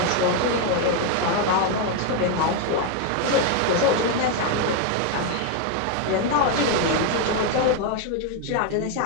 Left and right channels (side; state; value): both; different; correlation 0.01